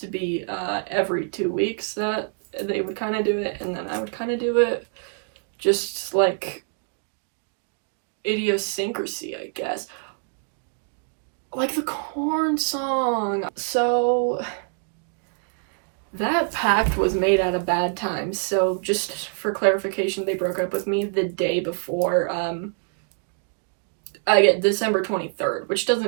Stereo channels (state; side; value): silent; left; 58 dB below the other